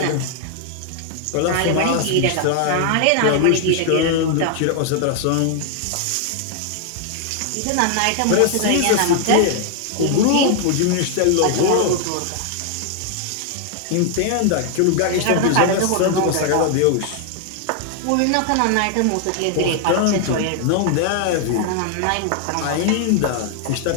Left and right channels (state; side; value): different; both; correlation 0.00